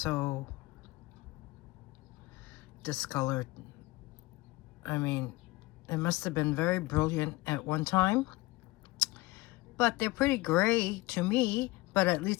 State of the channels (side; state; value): right; quieter; 20.6 dB